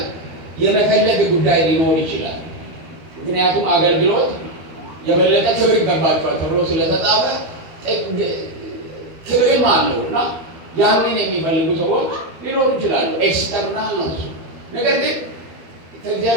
የመፈለግ ጉዳይ ሊኖር ይችላል። ምክንያቱም አገልግሎት የበለጠ ክብር ይገባቸዋል ተብሎ ስለተጻፈ ክብርም አለው እና ያንን የሚፈልጉ ሰዎች ሊኖሩ ይችላሉ። ኤክስተርናል ነው እሱ። ነገር ግን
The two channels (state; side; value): late; left; 12 ms